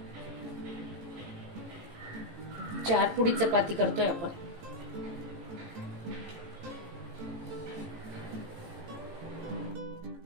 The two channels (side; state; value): left; late; 18 ms